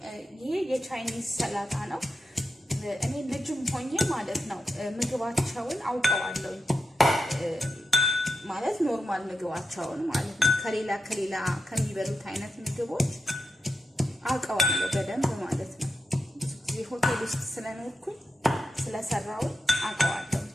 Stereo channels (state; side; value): normal; both; correlation 0.87